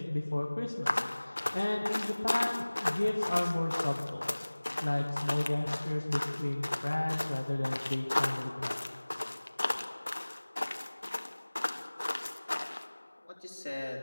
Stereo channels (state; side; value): inverted; both; correlation -1.00